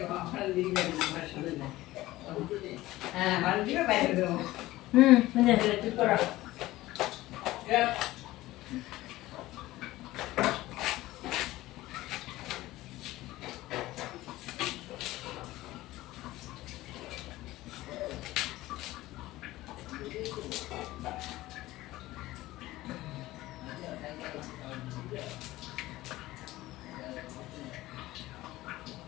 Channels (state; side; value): quieter; right; 17.3 dB